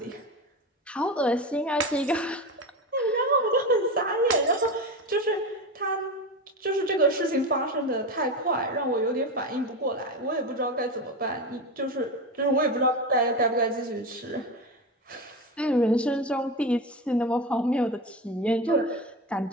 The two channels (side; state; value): both; normal; correlation 0.21